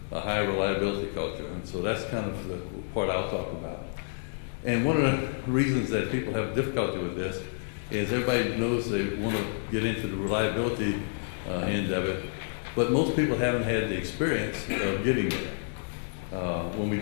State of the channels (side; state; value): right; silent; digital silence